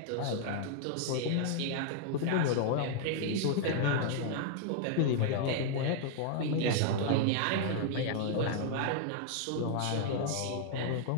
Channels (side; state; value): both; different; correlation 0.00